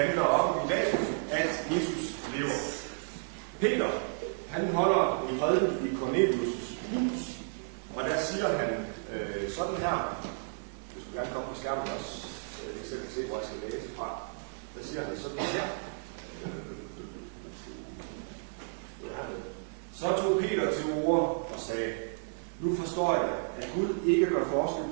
om i dag, at Jesus lever. Peter, han holder en prædiken i Cornelius' hus, og der siger han sådan her. Du skulle gerne komme på skærmen også, jeg selv kan se, hvor jeg skal læse fra. Der siger han sådan her. Så tog Peter til orde og sagde, nu forstår jeg, at Gud ikke gør forskel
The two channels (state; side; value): silent; left; 56 dB below the other